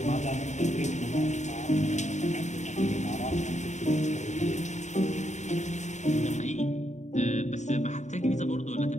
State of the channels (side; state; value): right; late; 0.34 ms